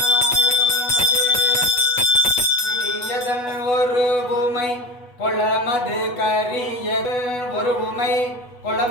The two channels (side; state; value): right; late; 8.1 ms